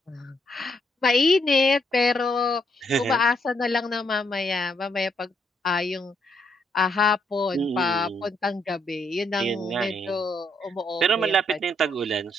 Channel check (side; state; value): both; normal; correlation 0.74